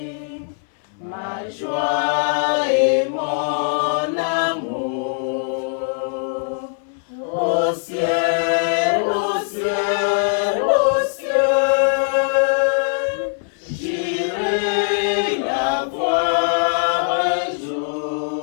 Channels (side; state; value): right; silent; 65 dB below the other